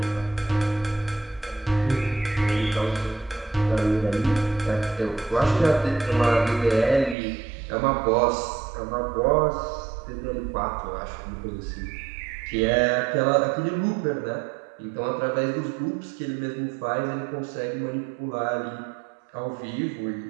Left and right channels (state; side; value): drops out; left; at 7.2 s